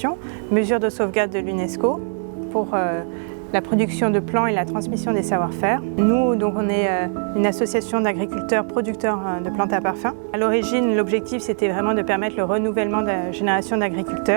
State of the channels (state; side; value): silent; left; 64 dB below the other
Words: mesure de sauvegarde de l'UNESCO pour la production de plants et la transmission des savoir-faire. Nous, donc, on est une association d'agriculteurs producteurs de plantes à parfum. À l'origine, l'objectif, c'était vraiment de permettre le renouvellement de la génération